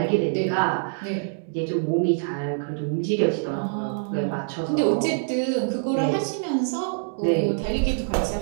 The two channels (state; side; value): silent; left; digital silence